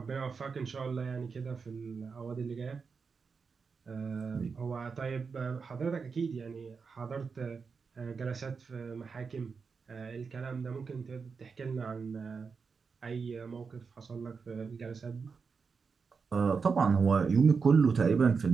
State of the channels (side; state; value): left; quieter; 5.3 dB